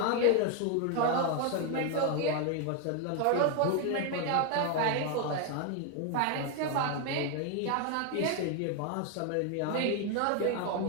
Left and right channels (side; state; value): both; different; correlation 0.01